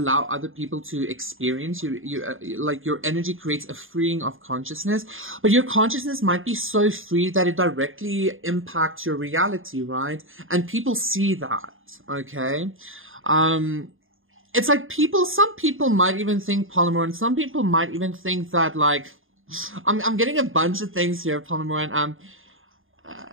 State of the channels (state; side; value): late; left; 0.59 ms